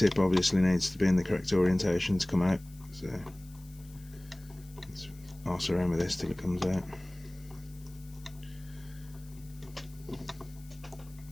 obviously needs to be in the correct orientation to come out. So let's arse around with this till it comes out.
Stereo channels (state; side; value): noise; left; hiss, 24 dB below the sound